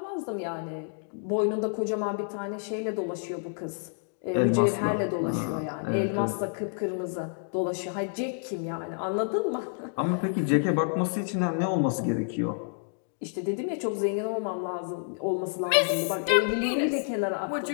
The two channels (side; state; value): right; silent; digital silence